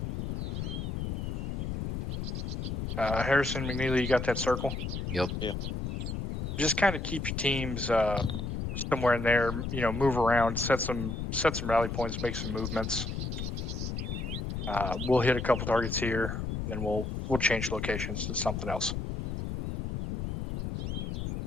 Harrison, McNeely, you got that circle? Yep. Yeah. Just kind of keep your teams somewhere in there. Move around, set some rally points, make some movements. We'll hit a couple targets here, then we'll change locations to something else.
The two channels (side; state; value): left; noise; rumble, 3 dB below the sound